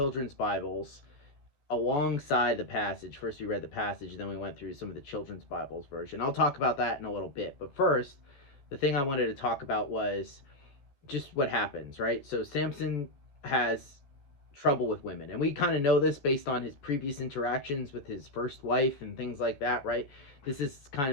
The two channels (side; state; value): right; late; 14 ms